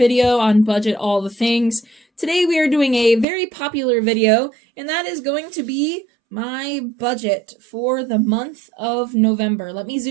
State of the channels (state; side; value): drops out; left; at 3.2 s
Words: on Budget All the Things. Today we are doing a very popular video, and that is going to be my budget for the month of November. Let me